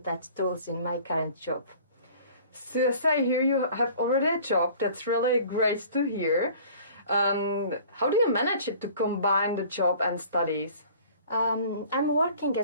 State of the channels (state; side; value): inverted; both; correlation -0.48